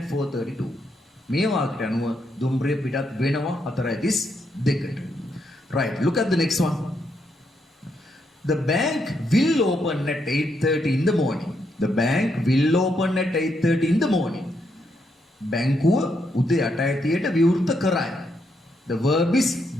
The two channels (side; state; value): both; normal; correlation 0.78